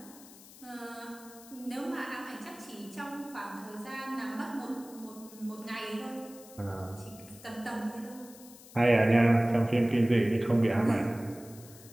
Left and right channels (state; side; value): noise; left; hiss, 20 dB below the sound